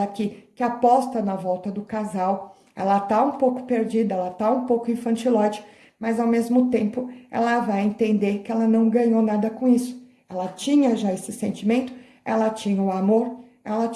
aqui que aposta na volta do casal. Ela tá um pouco perdida, ela tá um pouco infantiloide, mas ao mesmo tempo ela vai entender que ela não ganhou nada com isso. Ela tinha já esse sentimento, ela tinha o amor, ela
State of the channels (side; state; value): both; identical; correlation 1.00